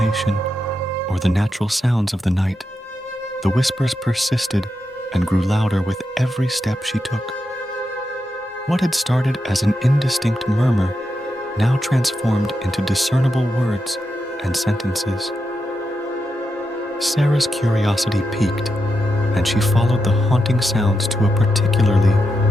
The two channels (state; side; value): normal; both; correlation 0.86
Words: or the natural sounds of the night, the whispers persisted and grew louder with every step she took. What had started as an indistinct murmur now transformed into discernible words and sentences. Sarah's curiosity piqued, and she followed the haunting sounds to a particularly